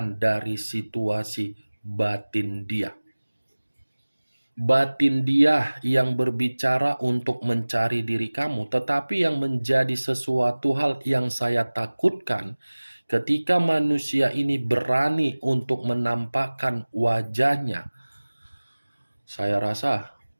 dari situasi batin dia. batin dia yang berbicara untuk mencari diri kamu, tetapi yang menjadi sesuatu hal yang saya takutkan ketika manusia ini berani untuk menampakkan wajahnya, saya rasa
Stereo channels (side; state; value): both; inverted; correlation -1.00